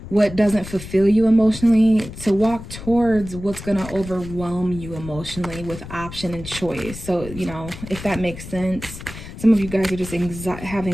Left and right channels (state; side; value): noise; left; rumble, 12 dB below the sound